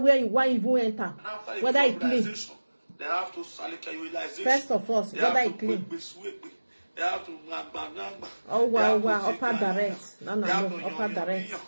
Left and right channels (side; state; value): both; inverted; correlation -1.00